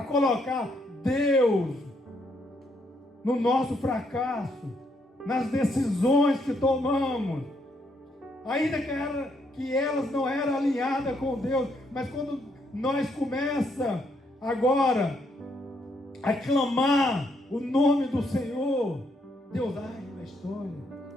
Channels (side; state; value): both; normal; correlation 0.74